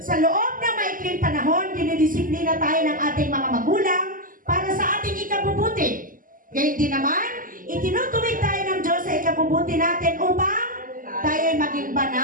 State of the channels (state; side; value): late; left; 0.40 ms